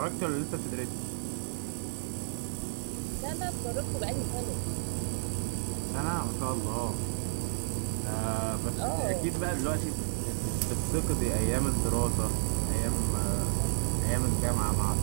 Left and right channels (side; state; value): left; silent; digital silence